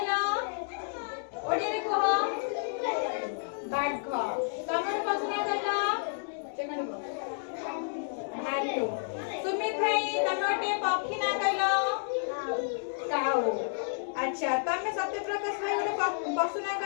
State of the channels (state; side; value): silent; right; 57 dB below the other